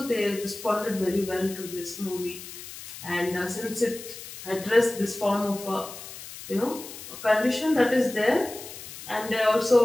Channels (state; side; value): noise; left; hiss, 13 dB below the sound